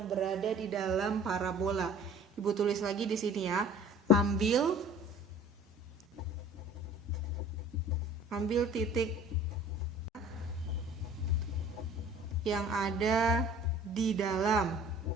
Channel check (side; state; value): both; normal; correlation 0.47